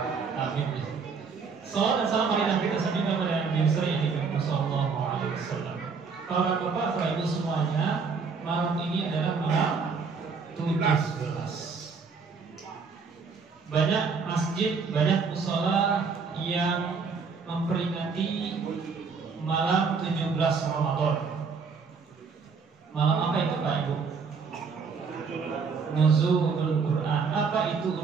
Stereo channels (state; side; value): quieter; left; 5.2 dB